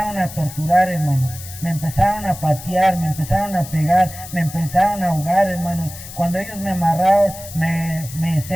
a torturar, hermanos. Me empezaron a patear, me empezaron a pegar, me empezaron a ahogar, hermanos. Cuando ellos me amarraron, me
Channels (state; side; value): noise; left; hiss, 14 dB below the sound